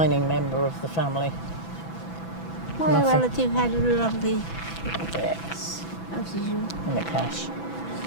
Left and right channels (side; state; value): right; late; 6.0 ms